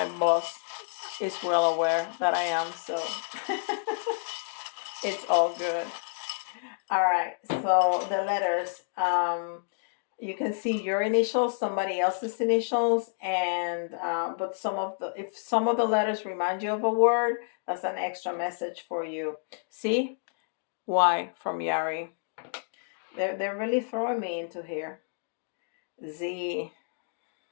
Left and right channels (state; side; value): silent; right; digital silence